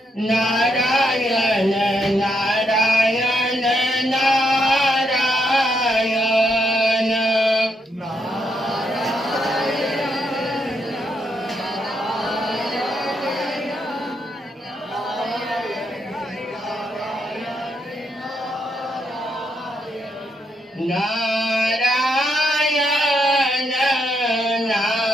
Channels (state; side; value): normal; both; correlation 0.78